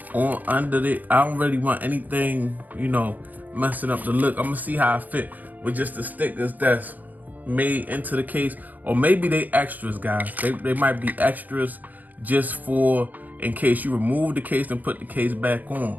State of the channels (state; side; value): late; left; 0.082 ms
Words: on under it. I don't really want anything, messing up the look. I'm gonna see how I fit with just the stickers that's made into the case, or maybe they extras, guys. They might be extras just for in case you remove the case and put the case back